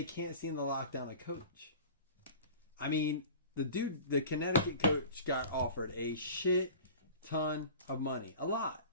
can't seem to lock down a coach? I mean, the Connecticut coach got offered a shit ton of money. A lot.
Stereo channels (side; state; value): both; inverted; correlation -0.39